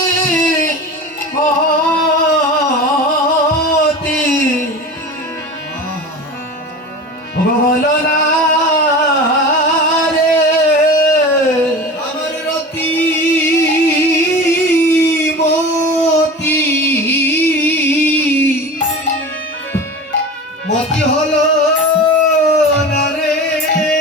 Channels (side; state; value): both; normal; correlation 0.32